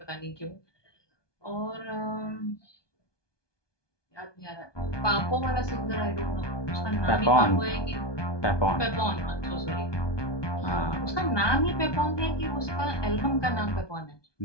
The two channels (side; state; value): right; late; 1.2 ms